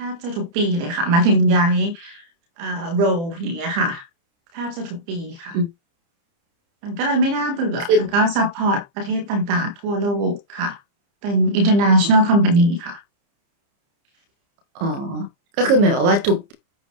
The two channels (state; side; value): late; left; 30 ms